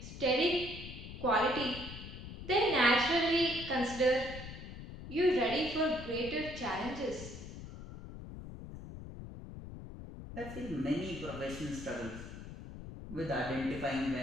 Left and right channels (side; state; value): left; noise; rumble, 11 dB below the sound